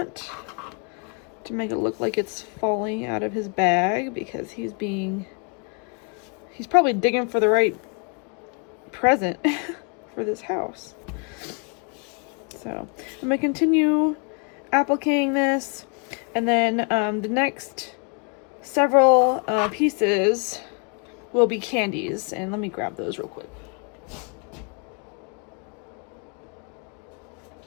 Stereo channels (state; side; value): quieter; right; 37.6 dB